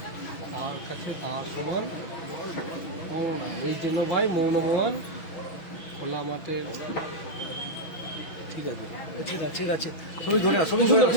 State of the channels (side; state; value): right; late; 6.1 ms